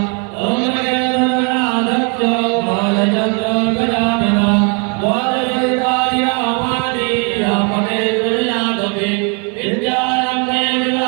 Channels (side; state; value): left; quieter; 36.0 dB